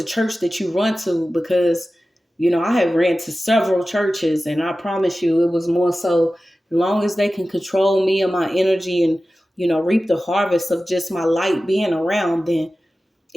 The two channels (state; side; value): normal; both; correlation 0.95